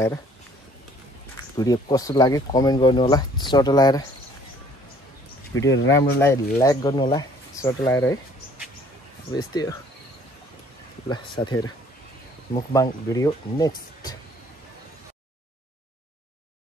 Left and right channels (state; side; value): normal; both; correlation 0.57